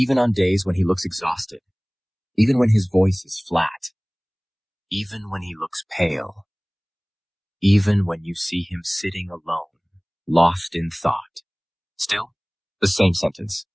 on days when he looks exhausted. Even when his voice is flat. Even when he looks pale. Even when you see him sitting alone, lost in thought. Still, the same sentence.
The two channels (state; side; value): identical; both; correlation 1.00